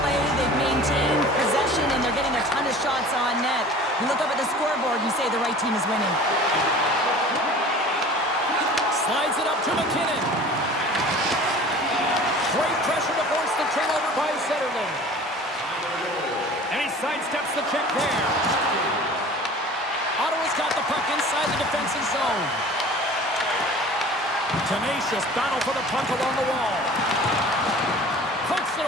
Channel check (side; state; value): both; normal; correlation 0.43